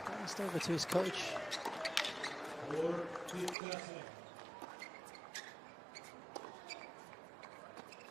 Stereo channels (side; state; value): left; drops out; at 3.6 s